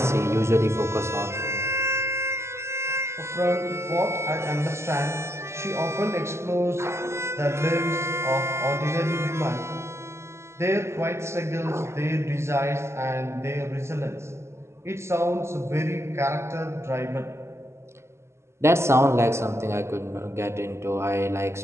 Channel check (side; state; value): left; late; 0.13 ms